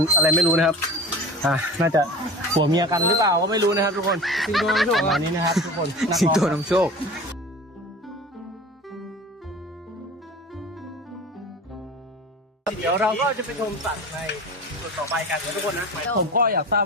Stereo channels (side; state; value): both; normal; correlation 0.36